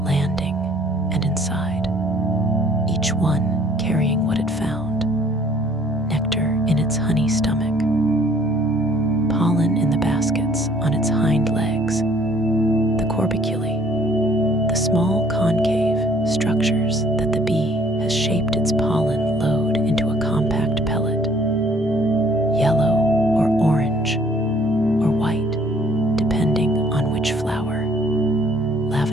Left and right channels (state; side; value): normal; both; correlation 0.58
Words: landing and inside, each one carrying what it found: nectar in its honey stomach, pollen in the baskets on its hind legs, the corbiculae, the small concave structures that the bee has shaped its pollen load into a compact pellet, yellow or orange or white, depending on which flower.